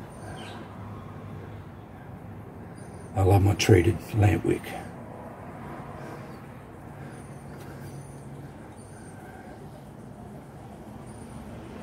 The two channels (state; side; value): identical; both; correlation 1.00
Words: I love my treated lamp wick.